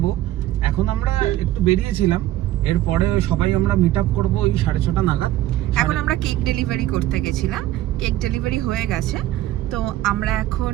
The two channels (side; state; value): left; quieter; 14.4 dB